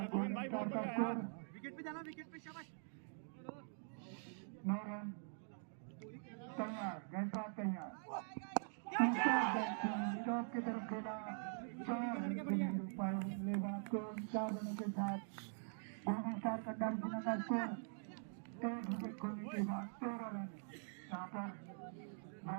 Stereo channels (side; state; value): left; silent; digital silence